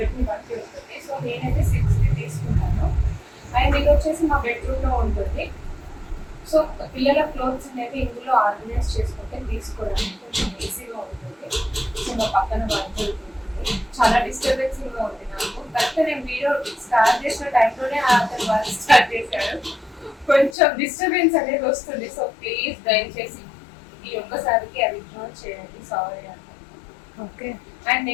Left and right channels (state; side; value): drops out; right; at 20.6 s